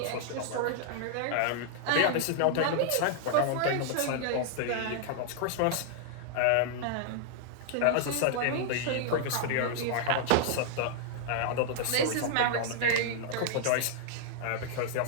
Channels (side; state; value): both; different; correlation -0.01